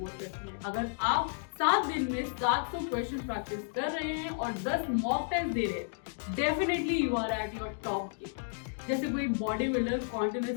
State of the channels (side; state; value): right; silent; digital silence